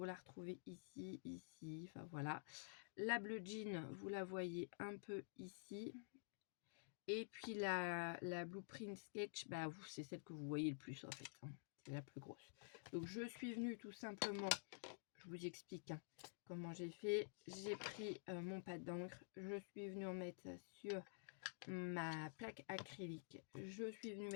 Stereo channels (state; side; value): silent; right; digital silence